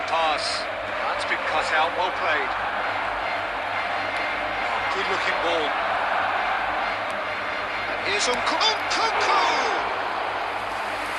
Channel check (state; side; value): identical; both; correlation 1.00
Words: pass. That's been cut out, well played. Good looking ball. And here's Nkunku!